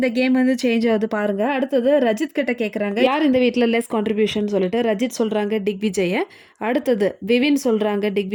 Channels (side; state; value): both; identical; correlation 1.00